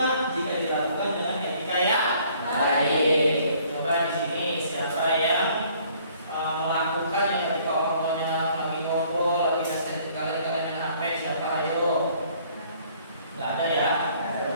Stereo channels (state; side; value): inverted; both; correlation -0.59